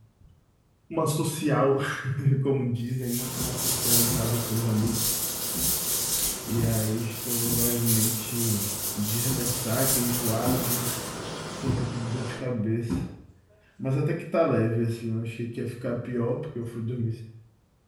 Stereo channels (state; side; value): identical; both; correlation 1.00